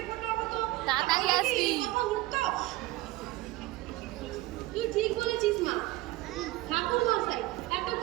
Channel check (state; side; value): quieter; left; 18.9 dB